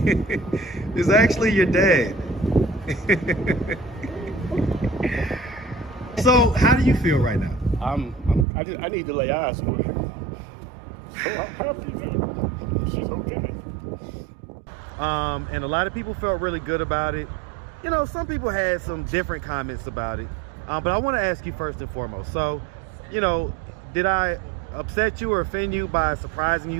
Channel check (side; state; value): left; drops out; at 8.5 s